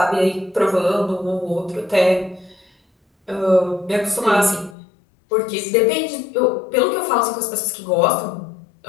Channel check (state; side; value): drops out; right; at 4.8 s